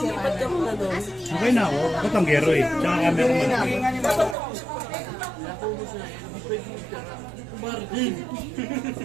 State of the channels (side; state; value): left; drops out; at 4.4 s